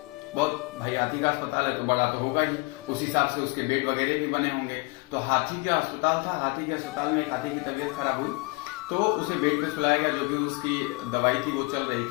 बहुत भाई हाथी का अस्पताल है तो बड़ा तो होगा ही, उस हिसाब से उसके बेड वगैरह भी बने होंगे। तो हाथी का अस्पताल था, हाथी के अस्पताल में एक हाथी की तबीयत खराब हुई तो उसे बेड पे सुलाया गया। जो भी उसकी दवाई थी वो चल रही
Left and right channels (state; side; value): quieter; right; 27.1 dB